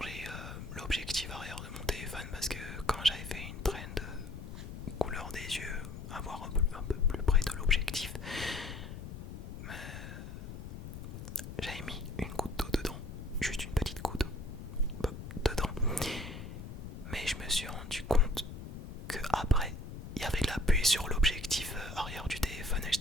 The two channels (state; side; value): noise; left; rumble, 9 dB below the sound